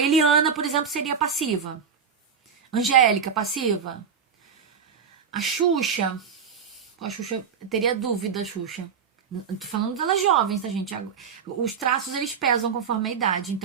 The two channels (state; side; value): quieter; left; 6.6 dB